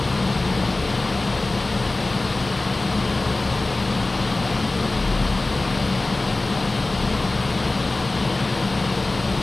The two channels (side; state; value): right; quieter; 3.0 dB